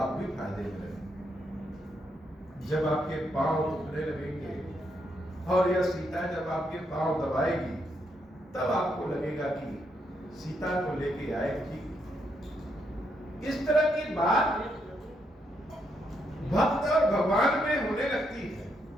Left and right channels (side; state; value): both; normal; correlation 0.78